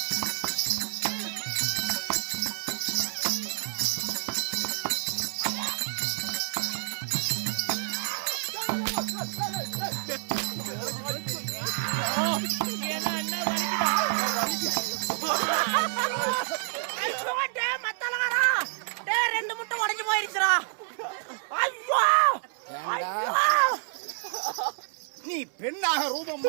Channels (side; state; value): left; silent; 59 dB below the other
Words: ஏன்னா என்ன வலிக்குதா? ஐயோ டே மத்தலகாரா டே ரெண்டு முட்டை உடைஞ்சு போயிருச்சுடா. ஐயோ ஐயோ நீ பெண்ணாக ரூபம்